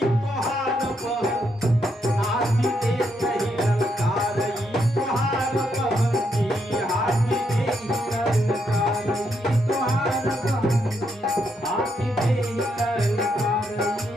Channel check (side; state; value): both; normal; correlation 0.78